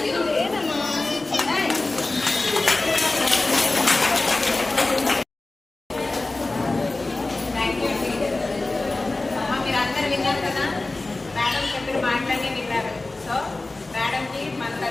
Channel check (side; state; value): right; quieter; 3.1 dB